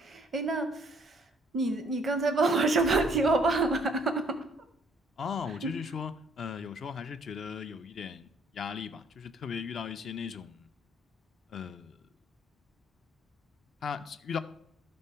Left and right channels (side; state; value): both; normal; correlation 0.62